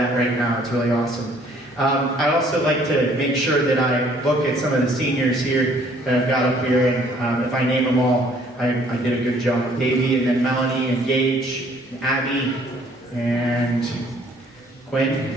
right now. It's really awesome. I also like to make sure that I look at some of the seniors here that I've got up here, and if I name them all, I did a good job. Davey, and then Melanie, and Gage, and Abby, and Quinn.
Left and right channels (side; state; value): both; normal; correlation 0.60